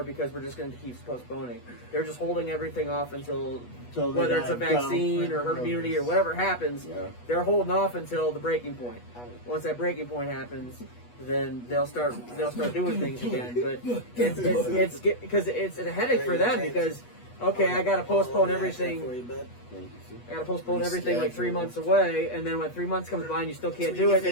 because we're just going to keep postponing. They're just holding everything off until whether it's a vaccine or herd immunity or whatever happens. Yeah. They're holding off until the breaking point. Once that breaking point happens, then they'll start doing things again. But it's because it's a headache for them because okay, I got to postpone everything. I got to postpone everything like 3 months away, and then when 3 months comes by and you still can't do it,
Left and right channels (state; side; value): late; right; 8.2 ms